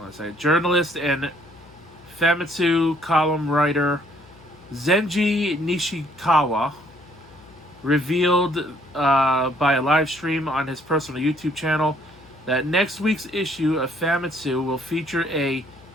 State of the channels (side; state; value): left; noise; hum, 25 dB below the sound